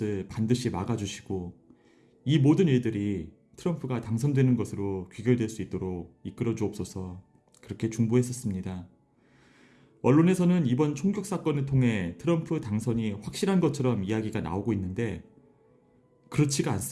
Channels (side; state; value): both; identical; correlation 1.00